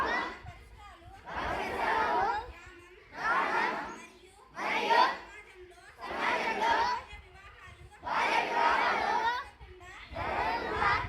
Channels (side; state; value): both; identical; correlation 1.00